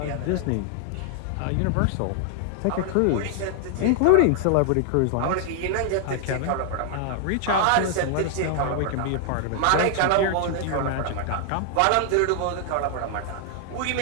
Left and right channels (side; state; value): both; different; correlation 0.00